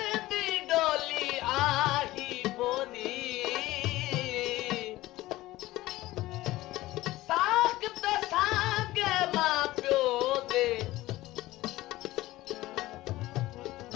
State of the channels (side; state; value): right; quieter; 17.4 dB